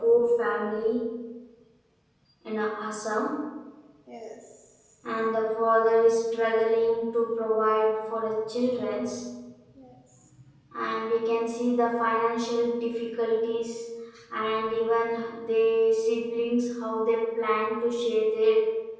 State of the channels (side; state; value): both; identical; correlation 1.00